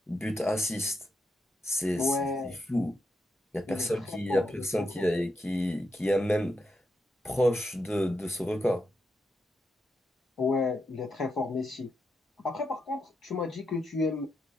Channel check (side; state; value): both; normal; correlation 0.84